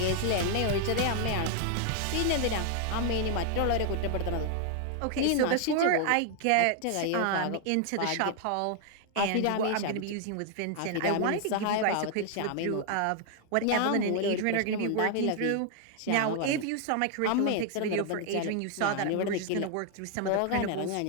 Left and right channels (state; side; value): different; both; correlation 0.00